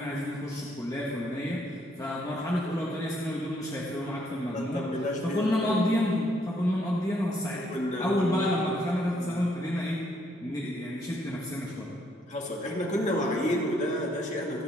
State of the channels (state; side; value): normal; both; correlation 0.70